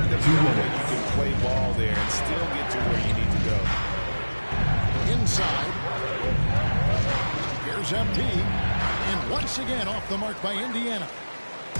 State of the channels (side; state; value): both; inverted; correlation -1.00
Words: to feel that you can play ball there and still get to where you need to go. Inside. Here's MP. And once again off the mark by Indiana.